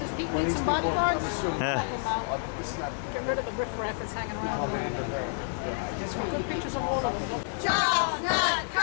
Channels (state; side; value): silent; right; 58 dB below the other